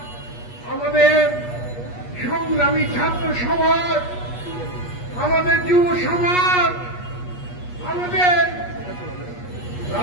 আমাদের সংগ্রামী ছাত্র সমাজ, আমাদের যুব সমাজ, আমাদের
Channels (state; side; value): late; right; 8.3 ms